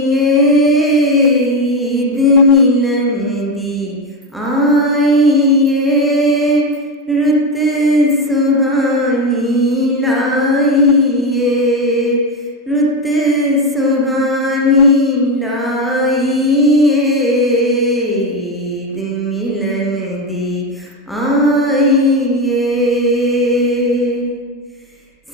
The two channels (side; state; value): both; normal; correlation 0.14